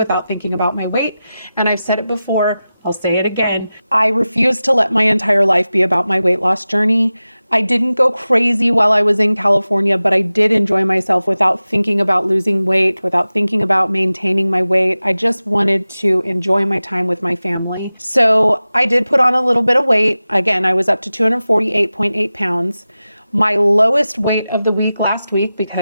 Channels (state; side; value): inverted; both; correlation -0.95